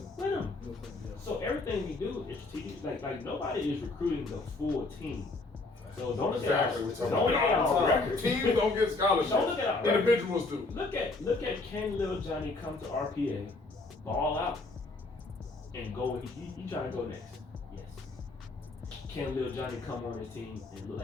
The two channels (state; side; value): quieter; right; 3.4 dB